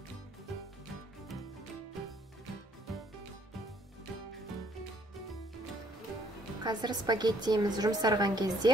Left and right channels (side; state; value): both; normal; correlation 0.64